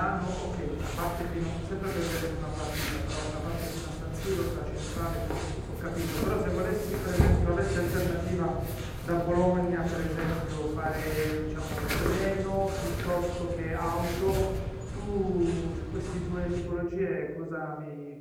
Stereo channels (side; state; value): both; identical; correlation 1.00